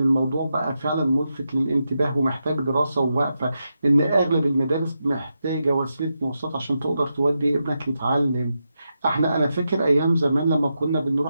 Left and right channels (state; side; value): inverted; both; correlation -0.87